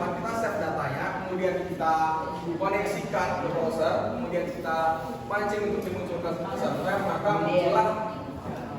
kita save datanya, kemudian kita koneksikan ke browser, kemudian kita pancing untuk dimunculkan ke server, maka muncullah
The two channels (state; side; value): identical; both; correlation 1.00